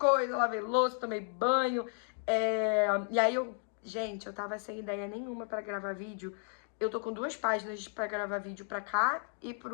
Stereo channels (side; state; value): right; silent; 55 dB below the other